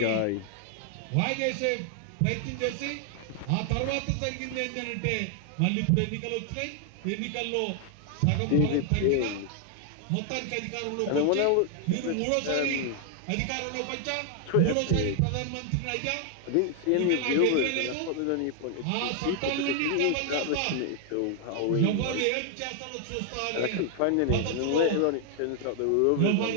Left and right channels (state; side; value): different; both; correlation 0.00